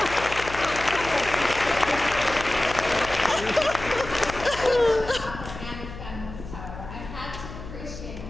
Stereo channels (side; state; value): left; noise; hum, 12 dB below the sound